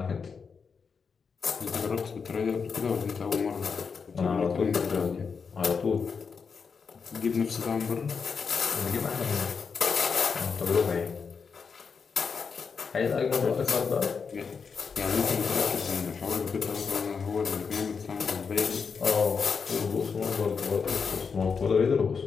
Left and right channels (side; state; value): right; quieter; 5.7 dB